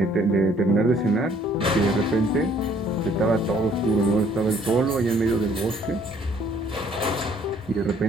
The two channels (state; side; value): normal; both; correlation 0.61